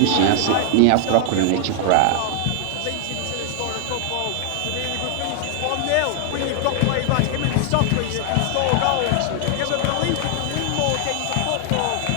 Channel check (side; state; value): both; different; correlation 0.00